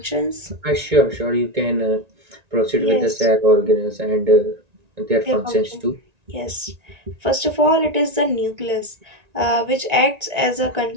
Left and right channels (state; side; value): late; left; 1.9 ms